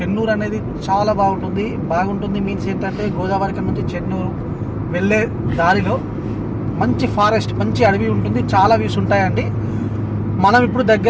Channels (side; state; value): both; identical; correlation 1.00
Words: అనేది చాలా బాగుంటుంది మీన్స్ ఏంటంటే గోదావరి నుంచి చెన్నూరు వెళ్ళే దారిలో మంచి ఫారెస్ట్, మంచి అడవి ఉంటుంది. చాలా వ్యూస్ ఉంటాయండి. మనం ఇప్పుడు